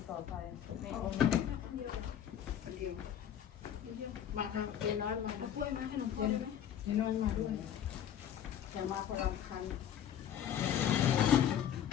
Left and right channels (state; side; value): quieter; right; 9.8 dB